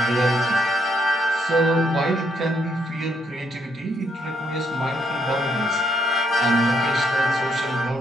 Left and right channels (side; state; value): both; normal; correlation 0.73